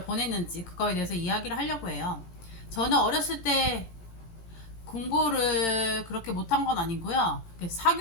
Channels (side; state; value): right; late; 18 ms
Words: 보냈는지 그거에 대해서 이야기를 하려고 해요. 저는 어렸을 때 공부를 그렇게 못한 건 아니고요.